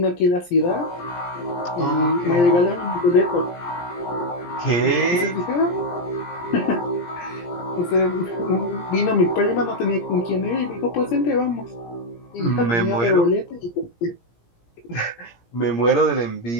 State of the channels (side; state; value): right; late; 17 ms